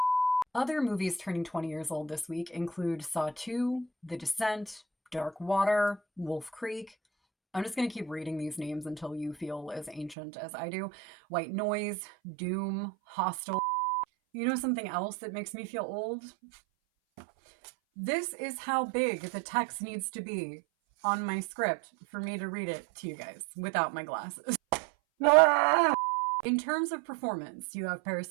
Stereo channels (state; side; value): drops out; left; at 10.2 s